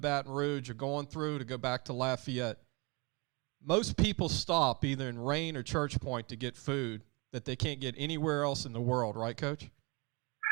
Rouge or going through to go back to Lafayette, most people stop either in Rayne or Church Point to get food that they can't get anywhere else in the world. Right, Coach?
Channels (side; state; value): left; quieter; 28.7 dB